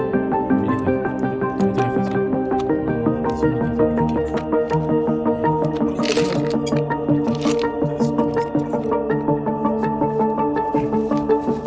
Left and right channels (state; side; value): identical; both; correlation 1.00